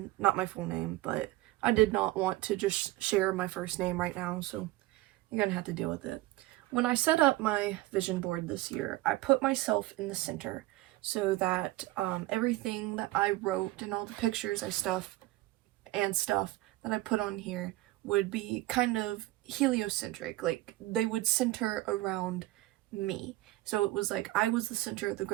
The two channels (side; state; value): left; quieter; 17.8 dB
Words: not my full name, but I did not want to just share my first name right now, so you're gonna have to deal with it. When I set up my vision board this year, I put myself in the center so that everything that I wrote and all the pictures stuff that I put on here would be kind of heliocentric, like they would center around me. So it was like I was the center of the